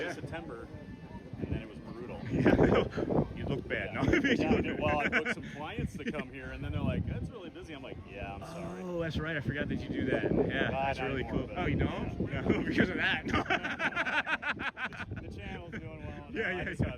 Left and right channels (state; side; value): identical; both; correlation 1.00